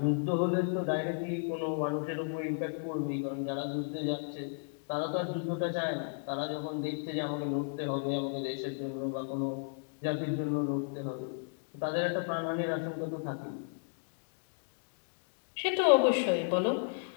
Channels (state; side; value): silent; right; digital silence